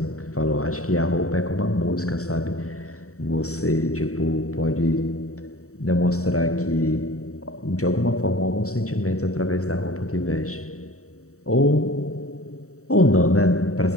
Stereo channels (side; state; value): right; late; 0.65 ms